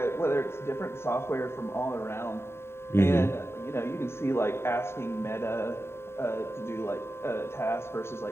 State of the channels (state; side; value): late; right; 0.12 ms